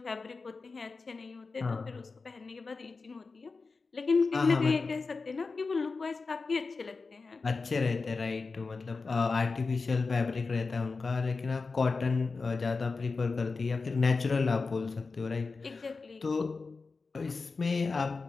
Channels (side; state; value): right; quieter; 4.2 dB